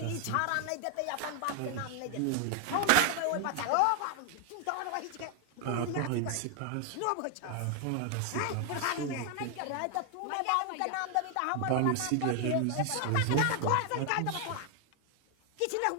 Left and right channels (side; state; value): both; different; correlation 0.00